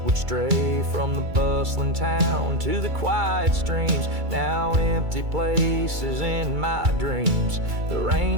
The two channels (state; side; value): late; left; 2.3 ms